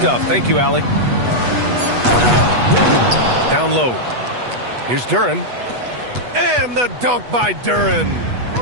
Thank you, Allie. Down low. Here's Duren. And the dunk by Duren.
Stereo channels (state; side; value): late; left; 8.2 ms